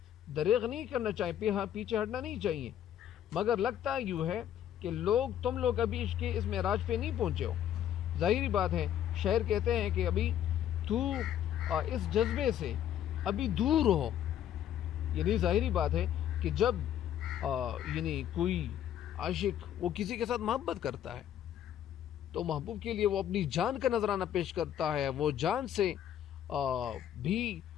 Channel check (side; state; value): right; quieter; 10.6 dB